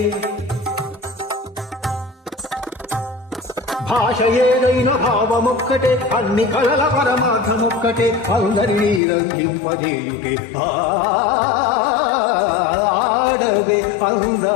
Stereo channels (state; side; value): drops out; right; at 9.0 s